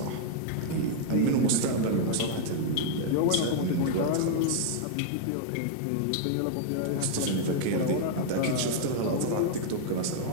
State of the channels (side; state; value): both; different; correlation 0.00